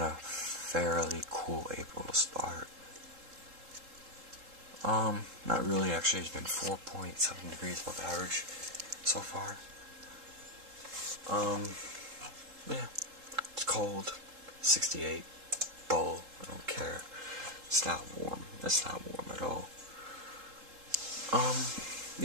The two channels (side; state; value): left; late; 3.8 ms